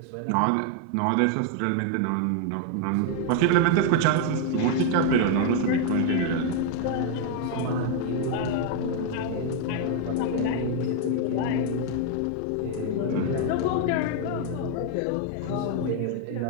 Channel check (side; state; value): both; different; correlation 0.00